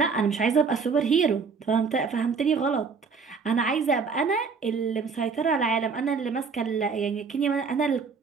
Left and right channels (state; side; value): quieter; left; 5.3 dB